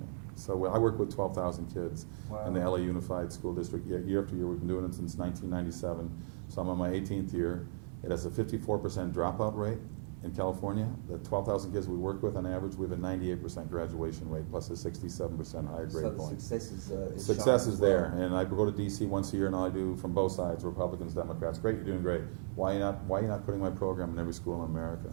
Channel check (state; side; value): silent; left; 54 dB below the other